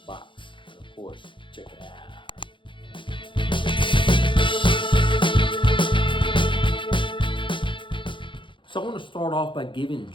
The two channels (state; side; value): late; right; 0.24 ms